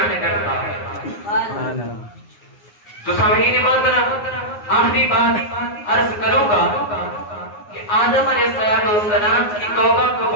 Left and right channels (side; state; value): right; late; 9.7 ms